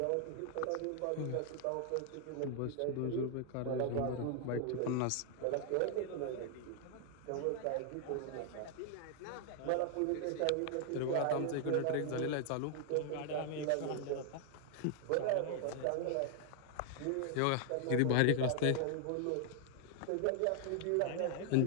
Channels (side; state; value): both; different; correlation 0.00